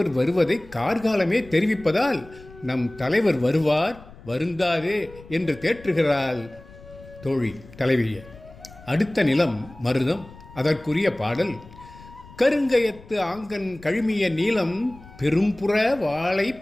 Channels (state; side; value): noise; left; rumble, 20 dB below the sound